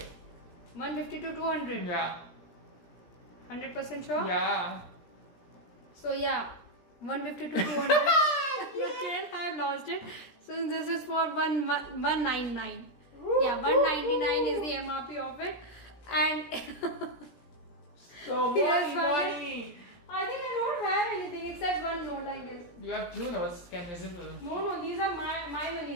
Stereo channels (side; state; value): right; late; 17 ms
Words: 150 to 200. Yeah. 100% sure? Yeah. So yeah, 150 to 200. Again, I have lost it. So this is for 199. Yeah, 199 is the MRP of it, and So Yes, money. I think I don't have anything except one note, I guess. You have 2 notes. Can visible. No, these are my